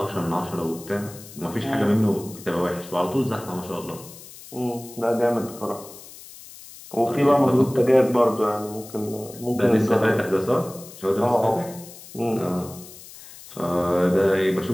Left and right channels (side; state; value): left; noise; hiss, 17 dB below the sound